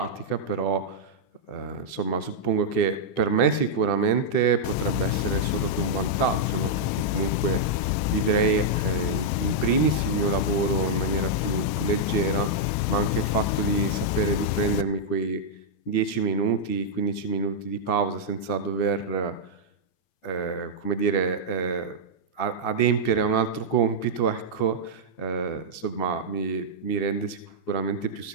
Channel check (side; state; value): right; late; 13 ms